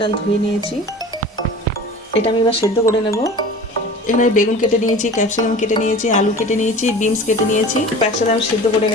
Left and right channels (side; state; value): both; normal; correlation 0.39